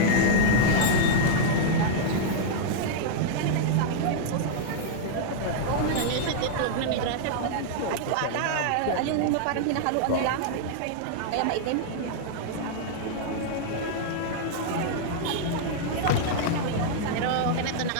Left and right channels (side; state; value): both; different; correlation -0.02